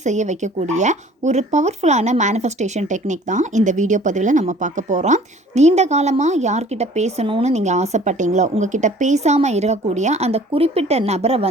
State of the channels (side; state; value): both; normal; correlation 0.51